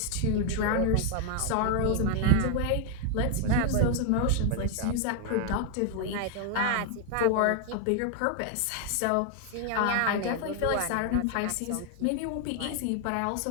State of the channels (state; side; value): different; both; correlation 0.00